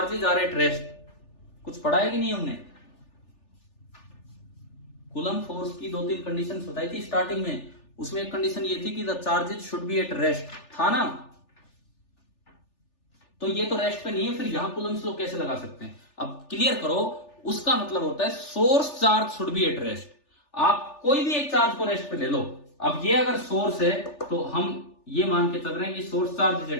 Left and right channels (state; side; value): late; right; 3.4 ms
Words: are at rest. कुछ पढ़ा है कि नहीं हमने? कूलम फोर्स की 2-3 कंडीशंस बताई थी स्टार्टिंग में, उसमें एक कंडीशन ये थी कि the charges should be at rest, था ना? तो ये तो रेस्ट पे नहीं है, फिर यहां कूलम्स लॉ कैसे लगा सकते हैं? अब क्लियर करो, उसका मतलब होता है source charge should be at rest. आप कोई भी एक चार्ज को रेस्ट पे ले लो। अब ये अगर सोर्स है तो हम ये मान के चल रहे हैं कि source charge is